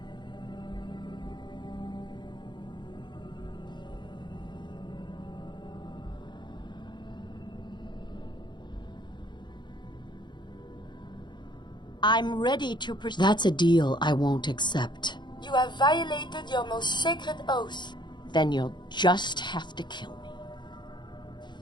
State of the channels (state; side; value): late; right; 0.22 ms